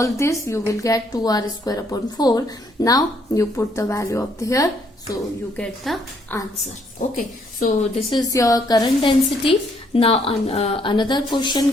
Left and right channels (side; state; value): both; normal; correlation 0.69